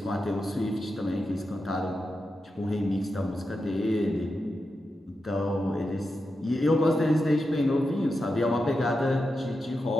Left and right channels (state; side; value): normal; both; correlation 0.88